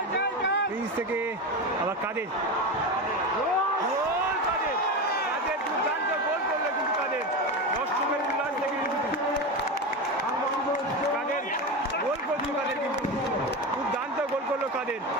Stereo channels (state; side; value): normal; both; correlation 0.20